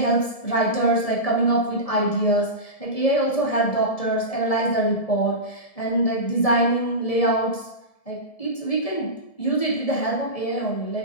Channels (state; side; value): late; right; 1.7 ms